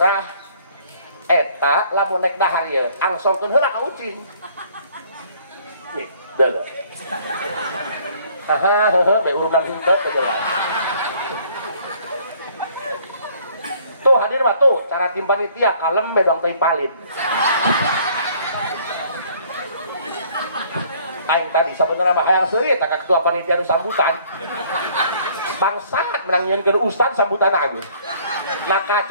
eta lamun naik dahar ya, angsongkeun heula ka ucing. Nih, deuh. Be urunan henteu teh jelas. Tuh hadir mah tuh cara tim panitia kalem medang teh palin. Aing tadi sabenerna mah hayang seuri eta ka ketua panitia nu sambutan. Bangsat menang nyieunkeun ustad sambutan agung.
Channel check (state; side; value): inverted; both; correlation -0.58